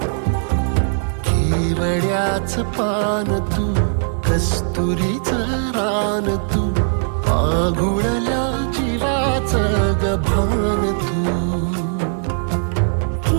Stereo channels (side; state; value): left; silent; 66 dB below the other